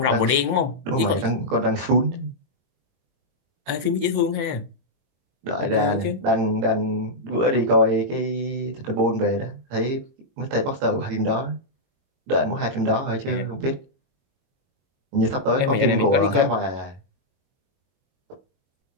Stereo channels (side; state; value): left; late; 22 ms